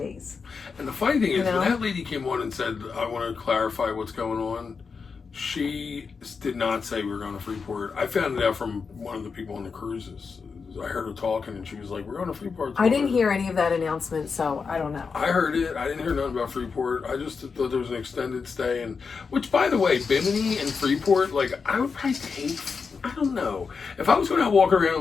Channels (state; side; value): quieter; right; 5.3 dB